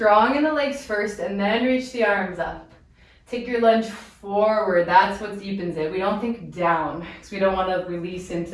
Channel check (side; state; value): both; identical; correlation 1.00